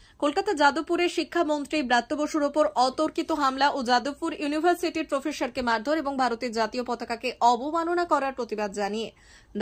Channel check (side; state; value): both; identical; correlation 1.00